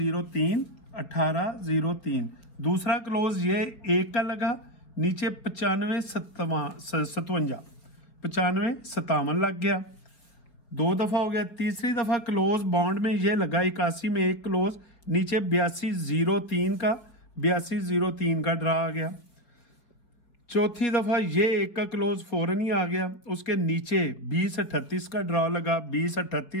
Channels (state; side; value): late; right; 4.9 ms